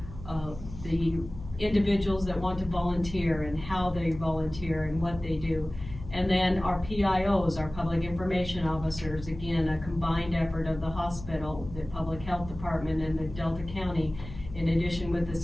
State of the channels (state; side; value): noise; left; hum, 13 dB below the sound